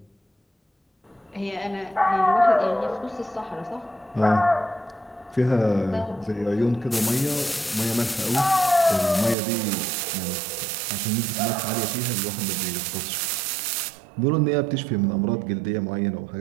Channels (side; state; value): left; drops out; at 9.3 s